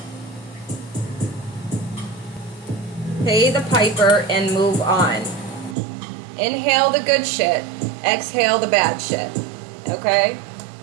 Pay the piper and move on. Inhale the good shit. Exhale the bad shit. Okay?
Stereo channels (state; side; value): drops out; left; at 5.8 s